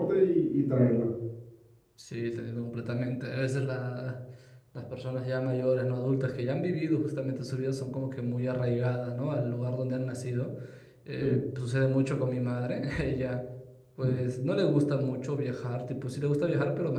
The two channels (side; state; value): both; identical; correlation 1.00